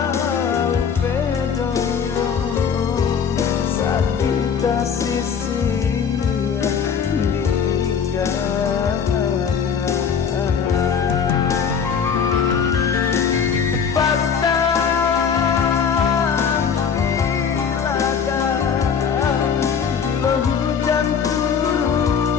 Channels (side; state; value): right; quieter; 6.8 dB